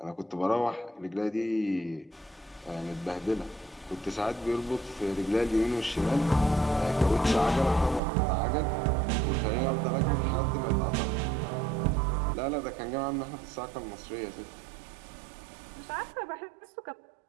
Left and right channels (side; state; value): left; drops out; at 8.0 s